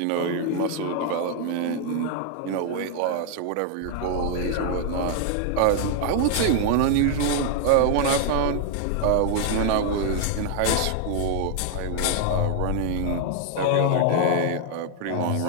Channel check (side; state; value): both; different; correlation 0.00